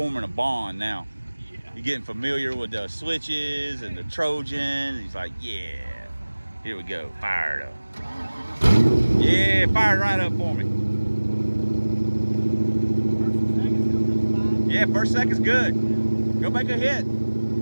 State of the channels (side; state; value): both; inverted; correlation -1.00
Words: a bond now. You're getting familiar with the switches and the Trojan. He's like, yeah, here we go, fire it up. Yeah, fire it right up for me. Yeah, first second's good. Go make a hit.